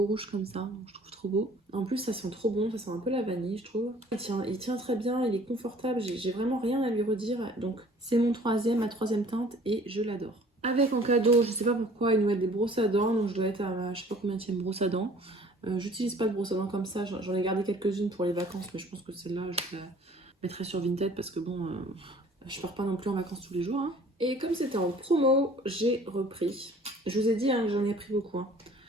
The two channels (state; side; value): normal; both; correlation 0.52